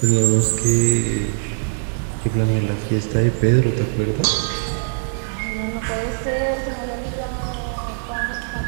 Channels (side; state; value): left; silent; 65 dB below the other